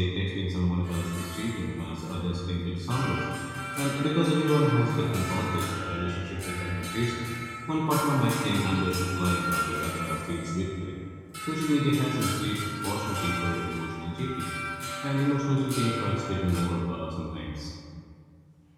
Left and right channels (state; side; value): identical; both; correlation 1.00